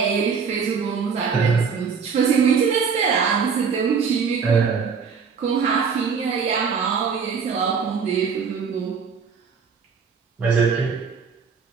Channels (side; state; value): left; quieter; 5.9 dB